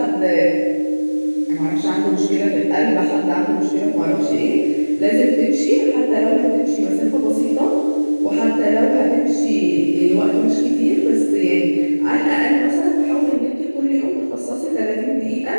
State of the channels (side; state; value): both; inverted; correlation -1.00